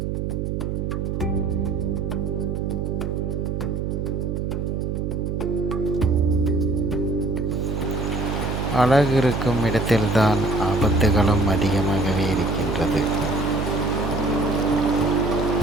அழகு இருக்கும் இடத்தில்தான் ஆபத்துகளும் அதிகமாகவே இருக்கின்றது.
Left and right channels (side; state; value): right; noise; hum, 1 dB below the sound